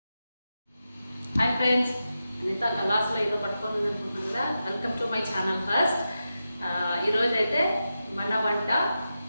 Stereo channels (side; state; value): both; inverted; correlation -0.90